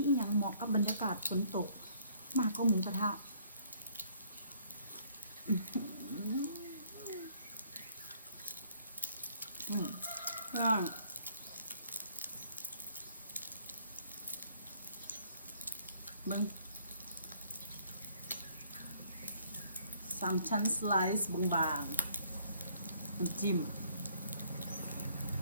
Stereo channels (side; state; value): both; inverted; correlation -0.62